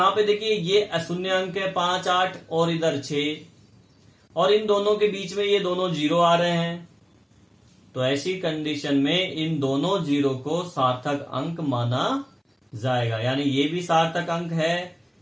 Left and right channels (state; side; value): identical; both; correlation 1.00